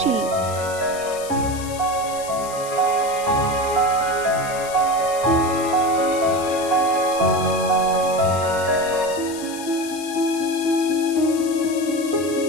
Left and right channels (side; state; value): left; noise; hiss, 13 dB below the sound